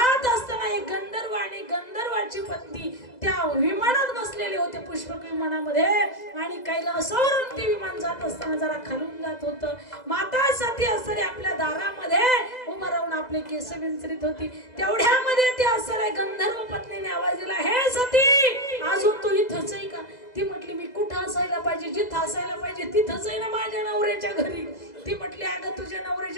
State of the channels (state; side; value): late; right; 2.0 ms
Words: असताना एक गंधर्व आणि गंधर्वाची पत्नी त्या विमानात बसलेले होते, पुष्पक विमानामध्ये. आणि कैलासावरून ते विमान जात असताना जरा खालून जात होतं. माता सती असणारी आपल्या दारामध्ये उभं राहून आपले केस विंचरीत होती. तेवढ्यामध्ये ते असणाऱ्या गंधर्व पत्नीने आवाज दिला, हे सती अजून तू इथंच आहे का? ती म्हटली मी कुठं असायला पाहिजे, जिथं असायला पाहिजे तिथंच आहे ना, माझ्या नवऱ्याच्या घरी. ती म्हटली अगं तुझ्या